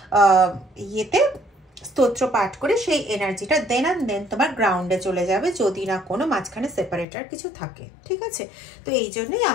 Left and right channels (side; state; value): right; drops out; at 7.1 s